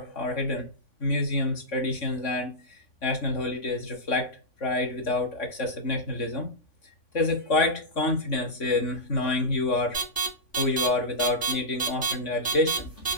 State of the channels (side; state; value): right; late; 3.5 ms